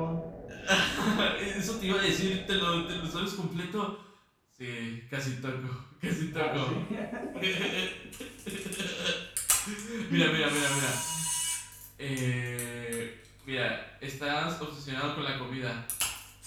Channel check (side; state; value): both; identical; correlation 1.00